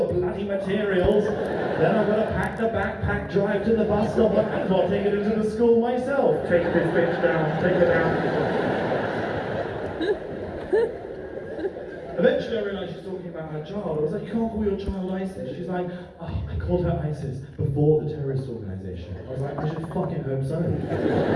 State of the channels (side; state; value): both; identical; correlation 1.00